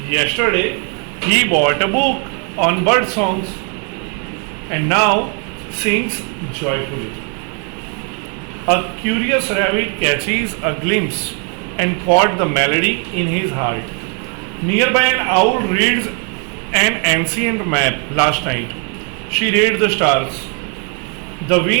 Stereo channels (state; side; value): quieter; left; 37.8 dB